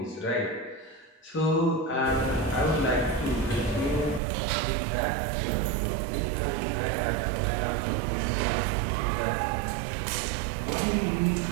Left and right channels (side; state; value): left; drops out; at 4.2 s